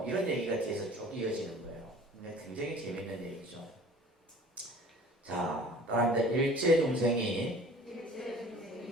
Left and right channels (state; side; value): normal; both; correlation 0.47